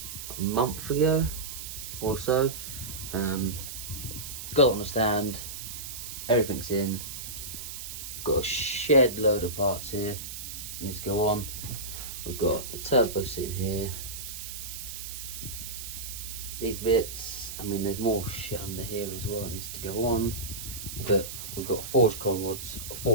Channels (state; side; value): noise; right; hiss, 8 dB below the sound